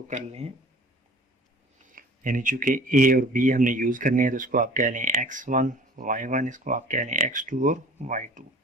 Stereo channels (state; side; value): normal; both; correlation 0.46